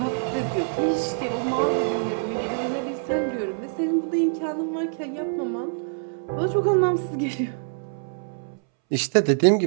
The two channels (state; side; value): silent; left; 62 dB below the other